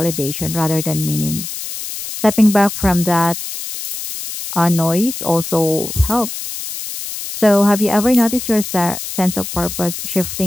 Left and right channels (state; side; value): noise; left; hiss, 7 dB below the sound